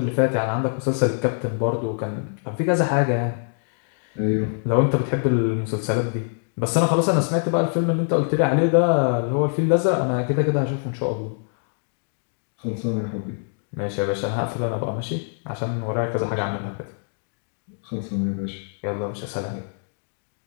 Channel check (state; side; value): silent; right; 63 dB below the other